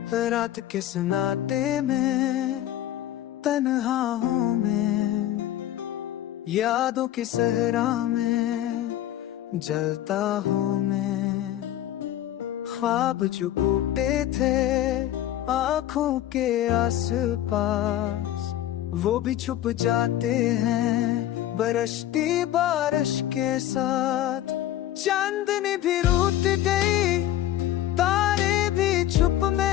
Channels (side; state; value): right; quieter; 12.9 dB